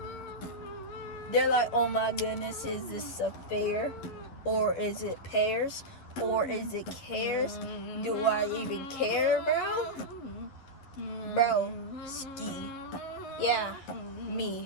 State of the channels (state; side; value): late; right; 11 ms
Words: They're like, oh my goodness, is this a fair? Or is it pears? Or is it cares? Do I even care, bro? Bro, ski. Yeah,